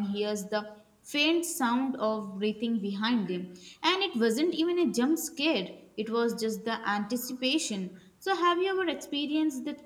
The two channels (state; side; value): identical; both; correlation 1.00